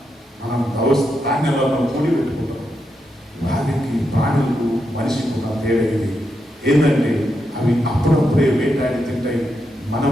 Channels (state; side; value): normal; both; correlation 0.84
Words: మనం ధాన్యాలను కూడి పెట్టుకుంటాం. వారికి ప్రాణులకు మనిషికి ఉన్న తేడా ఇది ఏంటంటే అవి అప్పుడప్పుడే వేటాడి తింటాయి.